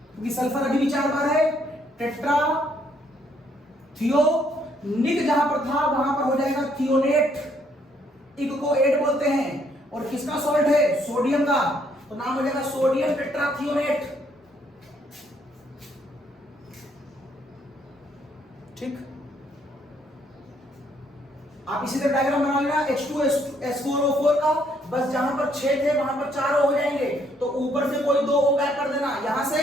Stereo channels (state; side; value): normal; both; correlation 0.69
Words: क्योंकि सल्फर अभी भी 4 बार है। टेट्रा थियोनिक जहां पर था वहां पर हो जाएगा थियोनेट, इक को 8 बोलते हैं। और किसका सॉल्ट है, सोडियम का, तो नाम हो जाएगा सोडियम टेट्राथियोनेट। ठीक, आप इसी तरह डायग्राम बना लेना H2S4O4 का, बस जहां पर 6 थे वहां पर 4 हो जाएंगे, तो ऊपर से कोई 2 O गायब कर देना, यहां से